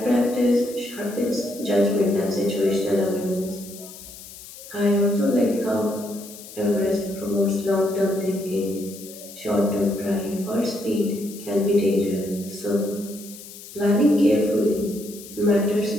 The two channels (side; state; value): left; noise; hiss, 16 dB below the sound